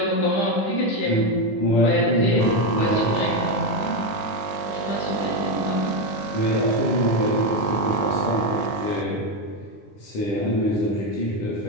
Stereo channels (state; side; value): late; right; 9.7 ms